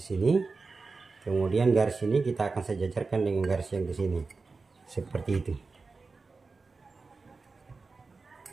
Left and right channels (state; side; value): quieter; left; 4.1 dB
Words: sini. Kemudian garis ini kita akan sejajarkan dengan garis yang di sini. Seperti itu.